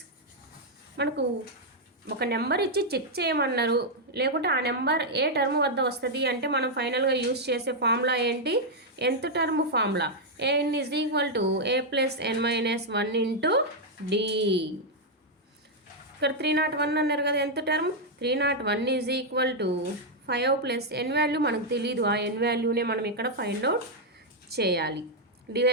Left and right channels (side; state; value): both; normal; correlation -0.02